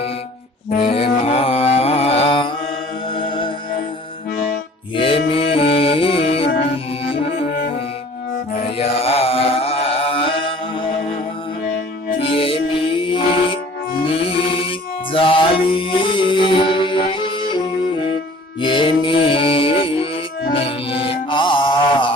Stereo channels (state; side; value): normal; both; correlation 0.50